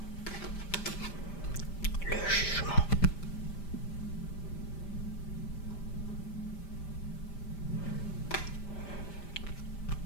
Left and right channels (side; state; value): right; late; 5.1 ms